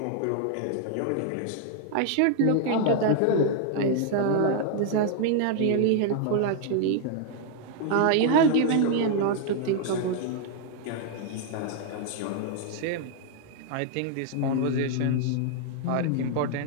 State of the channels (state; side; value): different; both; correlation 0.00